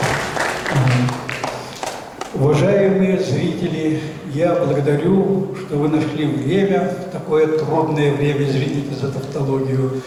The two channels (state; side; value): identical; both; correlation 1.00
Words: Уважаемые зрители, я благодарю, что вы нашли время, такое трудное время, извините за тавтологию,